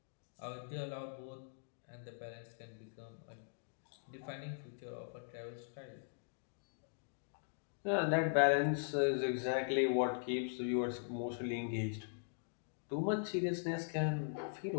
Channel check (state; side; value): silent; right; digital silence